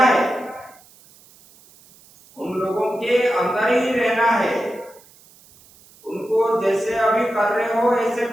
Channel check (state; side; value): noise; right; hiss, 26 dB below the sound